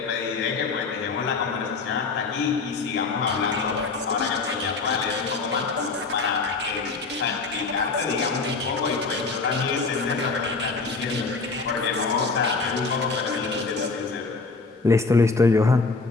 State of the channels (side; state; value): right; quieter; 4.2 dB